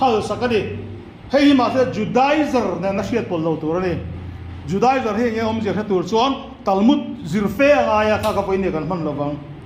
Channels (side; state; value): both; identical; correlation 1.00